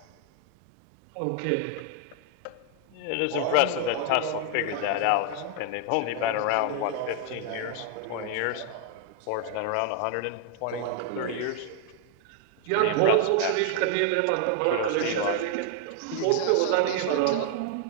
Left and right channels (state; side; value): different; both; correlation 0.00